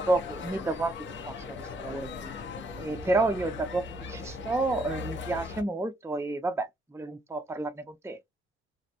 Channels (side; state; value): both; normal; correlation 0.70